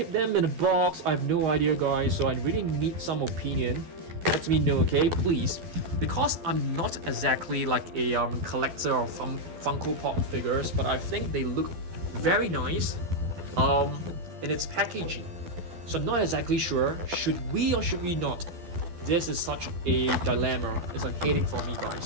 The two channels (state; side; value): late; left; 12 ms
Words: them in a box? I have no idea, guys. So I really need some opinion. Let me know, okay, please. Because I'm not exactly like a collector of Funko Pop figures, but I think they look very nice in its packaging. So I'm not exactly sure, should we or should we not? This is such a dilemma. It's a headache for me,